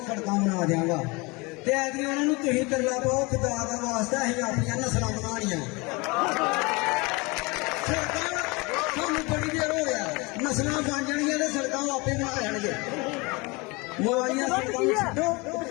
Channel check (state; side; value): quieter; right; 26.3 dB